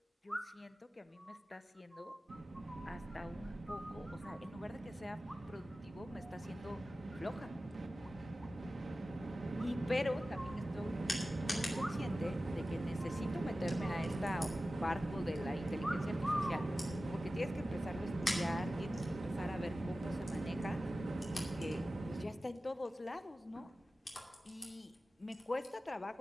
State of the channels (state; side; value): normal; both; correlation 0.95